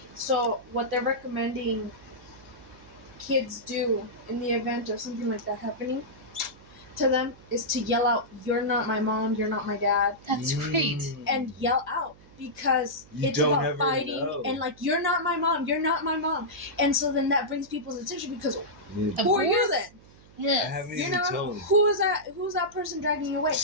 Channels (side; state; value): right; noise; hum, 24 dB below the sound